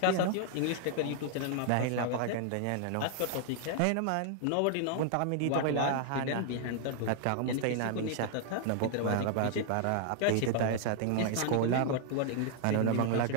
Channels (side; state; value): both; different; correlation -0.01